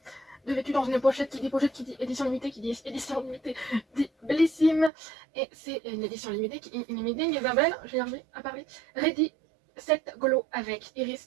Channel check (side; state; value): left; drops out; at 4.9 s